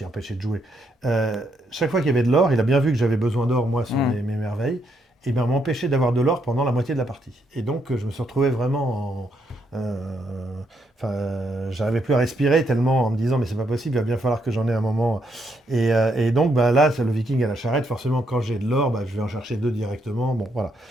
empêcher de jouer, chaque fois qu'il y avait de l'or, il a bien vu que j'avais besoin d'or, moi, sur mes merveilles, et bien m'empêcher d'avoir de l'or pendant la moitié de la partie. Et donc, je me suis retrouvé vraiment j'arrivais plus à respirer tellement en me disant mais c'est pas possible, il va bien falloir que j'en ai un moment. Et donc là, c'est le viking à la charrette. Forcément, quand j'ai de l'or, je vais en chercher 2 directement. Bon, voilà.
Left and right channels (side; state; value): both; normal; correlation 0.76